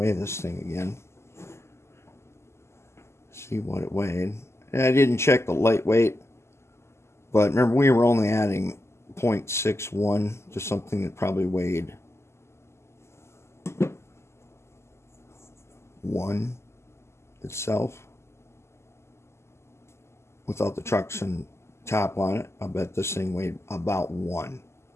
this thing again. See what it weighed. And I didn't check the lightweight, but remember we were only adding 0.61 to something that probably weighed 1 itself. Without the trucks and top on it, I bet this thing weighed about 1.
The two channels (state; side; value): late; right; 0.13 ms